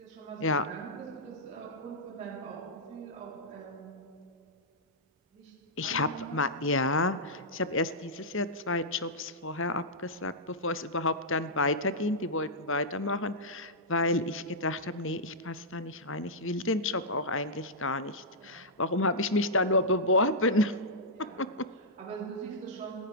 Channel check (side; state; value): both; normal; correlation -0.11